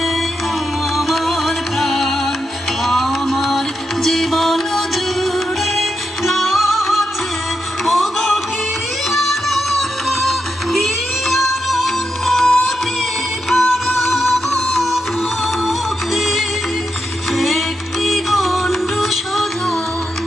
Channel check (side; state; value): both; normal; correlation 0.85